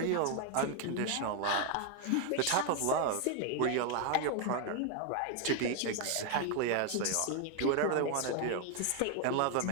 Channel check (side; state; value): both; different; correlation 0.00